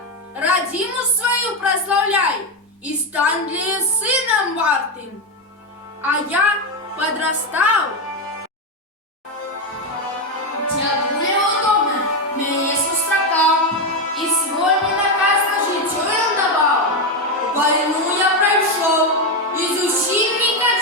родину свою прославляй и стань для её сыном вартым. А я подрастал. Дяду неудобно, меня сустракал, и свой мне наказ на житье им давал. Войну я прошел, и зусім не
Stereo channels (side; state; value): both; normal; correlation 0.09